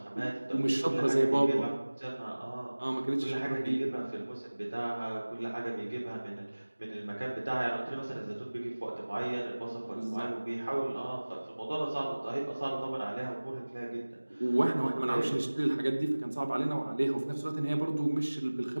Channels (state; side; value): inverted; both; correlation -1.00